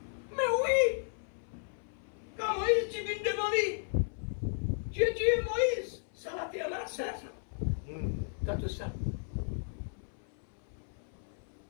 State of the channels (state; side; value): silent; right; 55 dB below the other